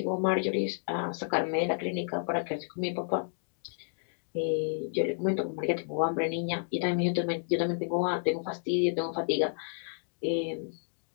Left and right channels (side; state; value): right; silent; digital silence